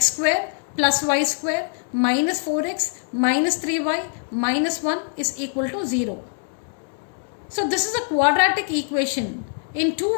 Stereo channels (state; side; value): silent; right; 62 dB below the other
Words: square plus y square minus 4x minus 3y minus 1 is equal to 0. So this is a quadratic equation in